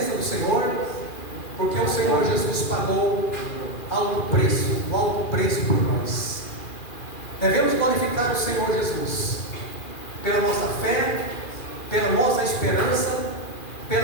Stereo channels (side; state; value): right; late; 2.4 ms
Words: do Senhor, porque o Senhor Jesus pagou o alto preço por nós. Devemos glorificar o Senhor Jesus pela nossa fé, pela nossa esperança,